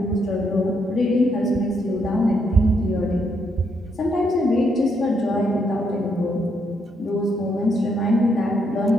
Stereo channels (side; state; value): both; normal; correlation 0.76